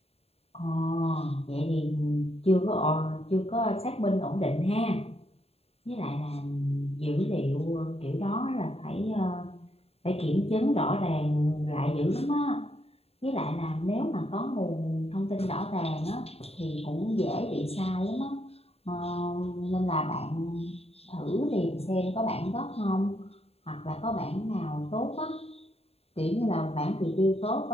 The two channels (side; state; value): right; late; 0.29 ms